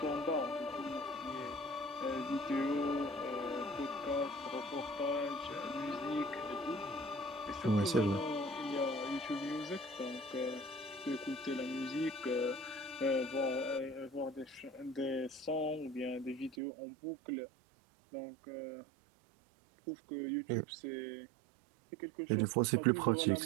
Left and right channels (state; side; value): drops out; left; at 16.6 s